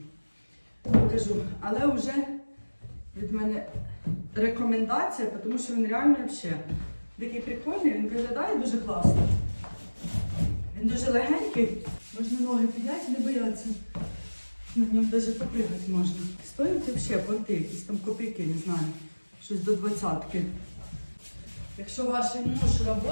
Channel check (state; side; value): inverted; both; correlation -1.00